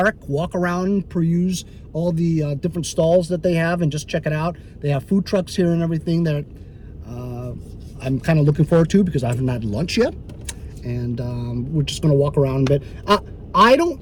walk around, peruse all the different stalls that they have and just check it out. They have food trucks here and everything that I'm kind of looking forward to because I haven't had lunch yet. And we're just going to walk around a bit. I don't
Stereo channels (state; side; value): identical; both; correlation 1.00